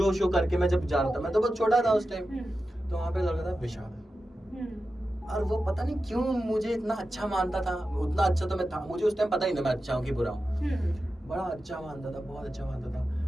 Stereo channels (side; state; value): both; normal; correlation 0.92